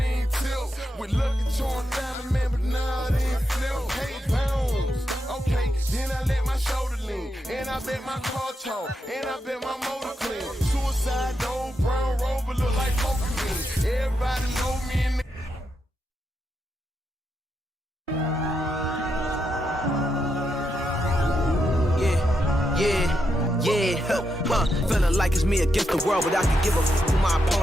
ain't tilt. With lucky torn down, man, but nah, it ain't flip. Hey, pounds, okay, then I let my shoulder lean. And I bet my car talk, and I bet my motor clean. Suicide, old brown rover look like Pokemon. Everybody know me in the Feeling like it's me against the world, but I can give a f who my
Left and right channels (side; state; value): both; normal; correlation 0.84